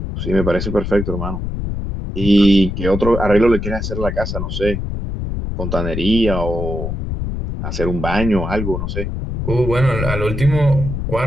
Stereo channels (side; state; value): left; noise; rumble, 4 dB below the sound